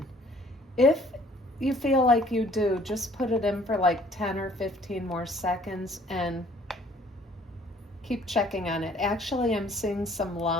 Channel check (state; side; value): normal; both; correlation 0.57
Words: If you feel like you do, just put it in for like 10 or 15 more seconds and keep checking on it. Actually, I'm seeing some